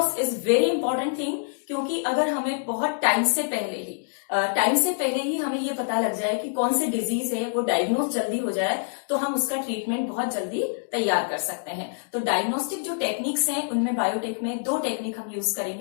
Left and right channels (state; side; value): silent; right; digital silence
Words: is very important thing, क्योंकि अगर हमें बहुत टाइम से पहले ही हमें ये पता लग जाए कि कौन से डिजीज है, वो डायग्नोस जल्दी हो जाए तो हम उसका ट्रीटमेंट बहुत जल्दी तैयार कर सकते हैं। तो डायग्नोस्टिक जो टेक्निक्स हैं उनमें बायोटेक में दो टेक्निक हम यूज